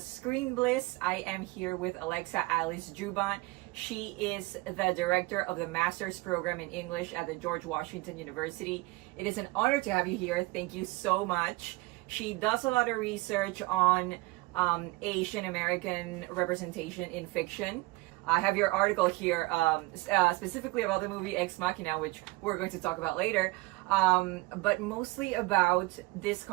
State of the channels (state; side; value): quieter; left; 22.1 dB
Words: Screenbliss. I am here with Alexa Alice Joubin. She is the director of the Master's Program in English at the George Washington University. It is an honor to have you here. Thank you so much. She does a lot of research on Asian American representation in fiction. I have your article here specifically about the movie Ex Machina, which we're going to talk about later, but mostly about this